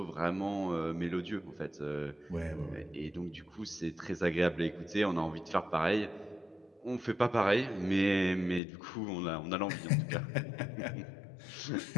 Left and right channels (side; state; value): right; drops out; at 8.6 s